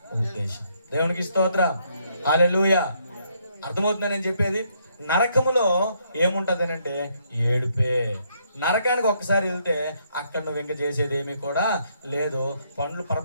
ఉద్దేశం. దేవునికి స్తోత్రం. హల్లెలూయా. అర్థమవుతుందని నేను చెప్పేది. నరకములో ఏముంటది అంటే ఏడుపే. నరకానికి ఒక్కసారి వెళ్తే అక్కడ నువ్వు ఇంకా చేసేది ఏమీ కూడా లేదు, పండ్లు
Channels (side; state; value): both; inverted; correlation -0.72